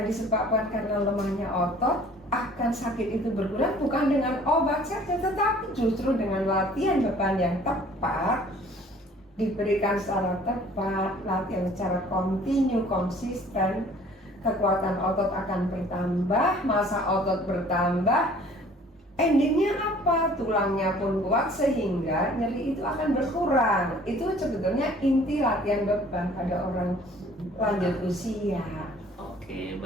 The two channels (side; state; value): both; normal; correlation 0.53